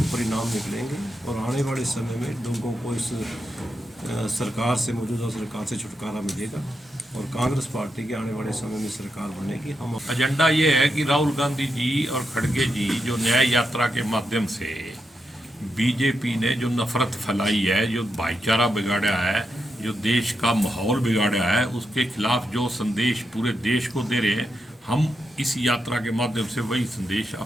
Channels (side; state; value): both; normal; correlation 0.85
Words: परिणाम निकलेंगे और आने वाले समय में लोगों को इस सरकार से, मौजूदा सरकार से छुटकारा मिलेगा और कांग्रेस पार्टी के आने वाले समय में सरकार बनेगी। हम एजेंडा ये है कि राहुल गांधी जी और खड़गे जी जो न्याय यात्रा के माध्यम से बीजेपी ने जो नफरत फैलाई है, जो भाईचारा बिगाड़ा है, जो देश का माहौल बिगाड़ा है, उसके खिलाफ जो संदेश पूरे देश को दे रहे हैं, हम इस यात्रा के माध्यम से वही संदेश